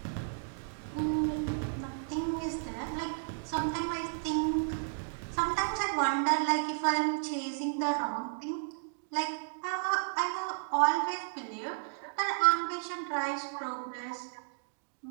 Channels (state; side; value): silent; left; digital silence